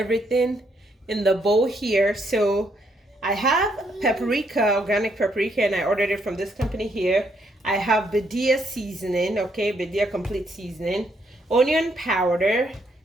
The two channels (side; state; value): both; normal; correlation 0.73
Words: in the bowl here. So I have paprika, organic paprika, and I ordered it from this company here. I have Badia seasoning, okay, Badia complete seasoning, onion powder,